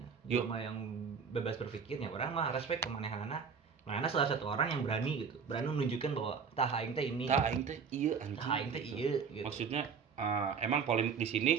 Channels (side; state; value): left; quieter; 6.1 dB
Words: Yo. Jelema yang bebas berpikir ya orang mah respect ke manehana. Manehana salah satu orang yang berani gitu. Berani menunjukkan bahwa tah aing teh ini. Tah aing teh ieu anjing. Tah aing teh ieu gitu. Maksudnya emang polemik di sini